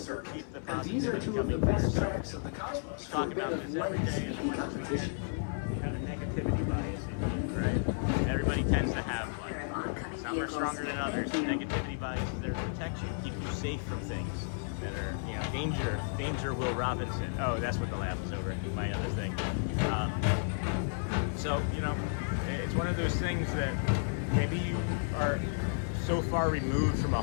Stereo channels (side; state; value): right; silent; 56 dB below the other